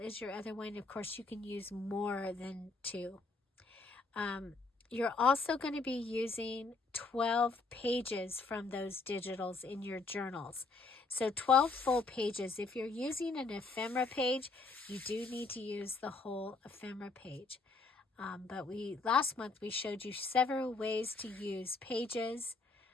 your other one. Of course, you can use more than 2. You're also going to be using 12 pages from those digitals in your journals. So 12 full pages. If you're using an ephemera page, you do need to use the whole ephemera page. But last month we showed you several ways to use pages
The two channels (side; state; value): right; quieter; 3.8 dB